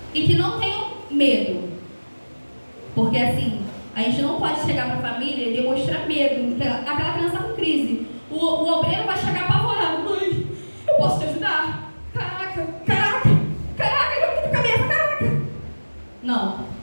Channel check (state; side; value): inverted; both; correlation -1.00